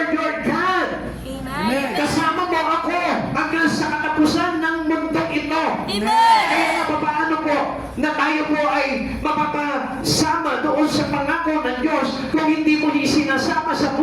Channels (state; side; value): identical; both; correlation 1.00